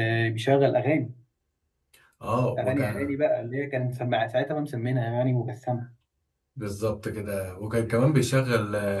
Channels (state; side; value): identical; both; correlation 1.00